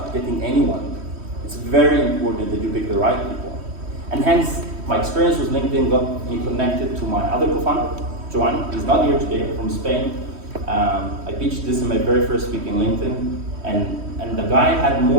getting anyone, it's very important that you pick the right people. And hence, my experience with LinkedIn got me connected to my other co-founder, Joan. He's not here today, from Spain. I pitched this in my very first week in LinkedIn, and the guy had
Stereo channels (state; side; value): late; left; 3.1 ms